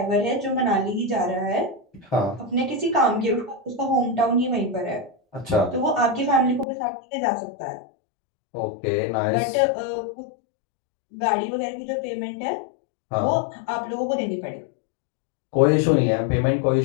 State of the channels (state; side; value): drops out; right; at 6.7 s